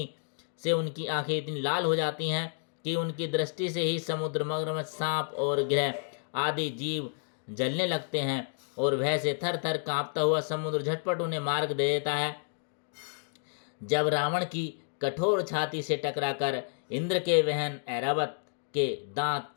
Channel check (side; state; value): right; silent; digital silence